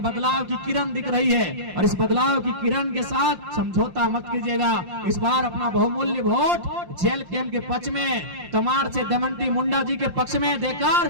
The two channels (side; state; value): left; late; 5.7 ms